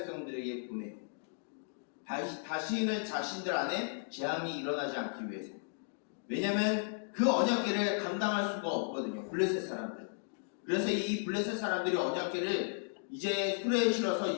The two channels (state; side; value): silent; right; digital silence